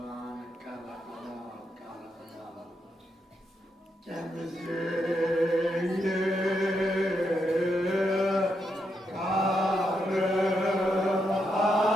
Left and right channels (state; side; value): normal; both; correlation 0.81